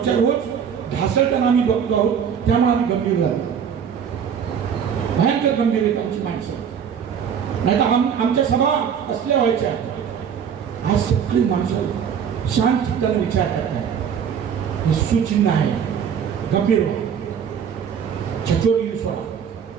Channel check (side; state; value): left; quieter; 7.7 dB